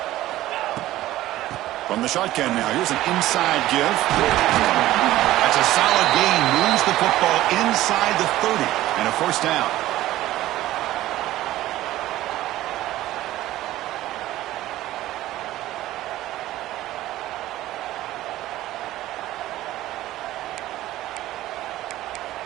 From the shotgun now, here's an inside give. That's a solid gain, moves the football inside the 30, and a first down.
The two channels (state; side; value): quieter; left; 15.3 dB